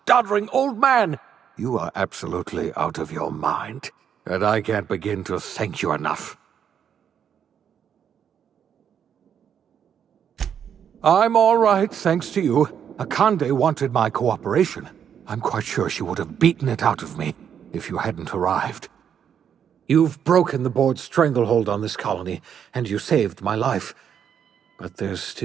doddering old man. You are absolutely out of your mind, and I can't begin to thank you enough. I'm all right, thanks to you. Akande wanted my cooperation. I'm quite sure she would have beaten it out of me if you hadn't arrived. You've broken the board's stranglehold on this colony, and you saved my life. But there's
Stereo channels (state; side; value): quieter; left; 8.4 dB